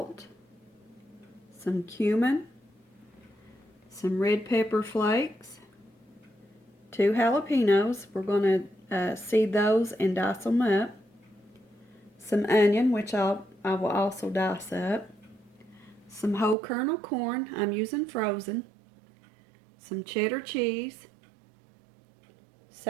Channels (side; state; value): left; drops out; at 16.6 s